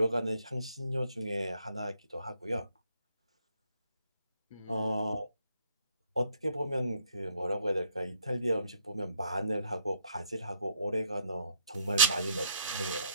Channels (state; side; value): inverted; both; correlation -0.69